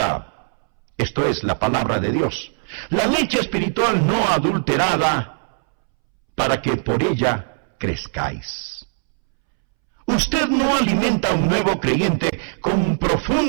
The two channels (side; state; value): left; silent; 65 dB below the other